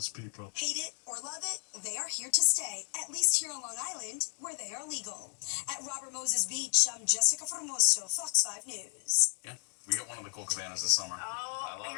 people. Hate it or love it, they are here to stay, at least here on Long Island, where they are legal. At Robert Moses Beach, I'm Jessica Formoso, Fox 5 News. Yeah, we got one of the cool cabanas this summer. Oh, I love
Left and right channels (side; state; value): right; silent; 56 dB below the other